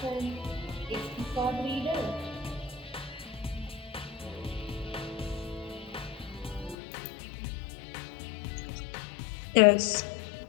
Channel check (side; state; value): right; drops out; at 6.8 s